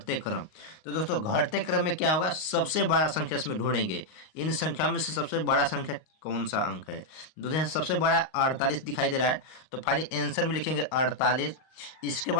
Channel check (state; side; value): late; right; 38 ms